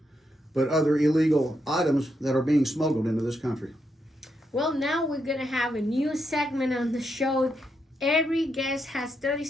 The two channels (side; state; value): both; normal; correlation 0.81